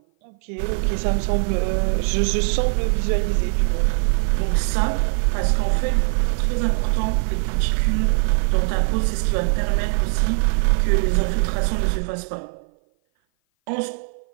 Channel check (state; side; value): silent; left; 56 dB below the other